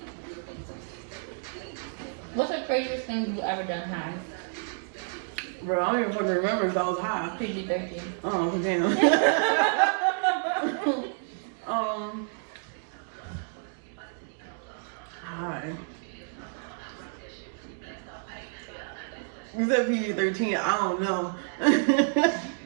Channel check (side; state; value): left; silent; 58 dB below the other